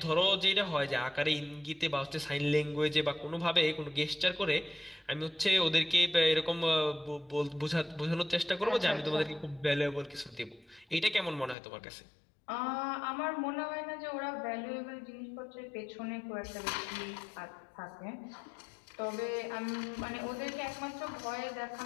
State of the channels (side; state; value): right; drops out; at 11.6 s